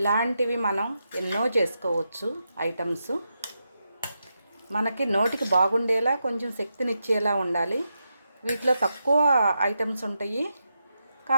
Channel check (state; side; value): inverted; both; correlation -0.86